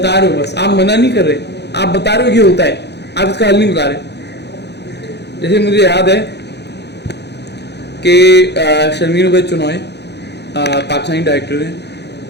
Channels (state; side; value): late; right; 0.49 ms